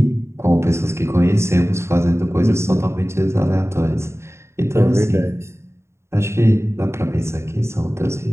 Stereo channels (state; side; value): late; left; 0.13 ms